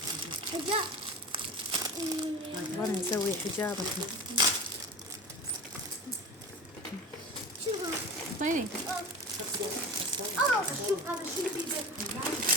حجاب. وانا نسوي حجاب الحين. شوفوا. اعطيني. شوف هذا شو البيبي.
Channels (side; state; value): both; normal; correlation 0.32